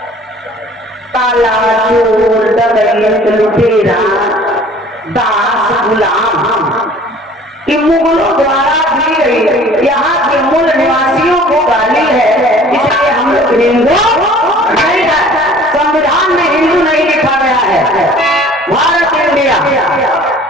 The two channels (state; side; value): normal; both; correlation 0.50